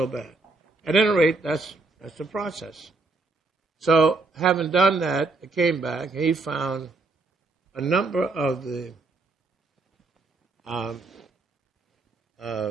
bad. At any rate, that's the process. So, having done that, I came back. He found a number of the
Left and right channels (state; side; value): quieter; left; 3.5 dB